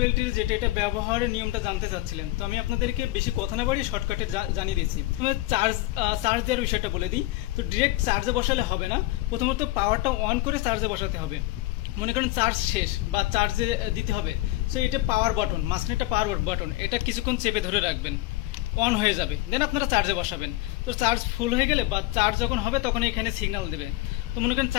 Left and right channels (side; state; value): right; quieter; 18.2 dB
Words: এটা ব্যবহারের নিয়মটা জানতে চাচ্ছিলেন, তো আমি আপনাদেরকে বেশি কথা না বাড়িয়ে শর্টকাটে জানিয়ে দিচ্ছি। চার্জ দেওয়ার বিষয়টা বলে দিই। তো ডিরেক্ট চার্জে বসালে হবে না, প্রথমত পাওয়ারটা অন করে চার্জে বসাতে হবে। মনে করেন চার্জ শেষ বা চার্জে দিতে হবে, সো এটা পাওয়ার বাটন, মাঝখানে একটা পাওয়ার বাটন, এটা কিছুক্ষণ চেপে ধরে রাখবেন, অন হয়ে যাবে, দেন আপনারা চার্জে বসাবেন। তো চার্জ ফুল হয়ে গেলে বা চার্জ যখন হবে তখন এখানে সিগন্যাল দেবে। তো মনে করেন